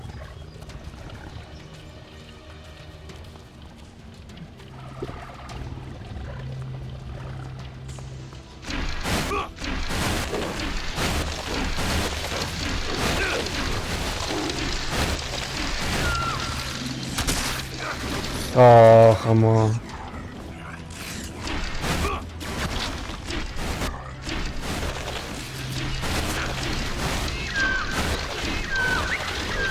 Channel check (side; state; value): both; identical; correlation 1.00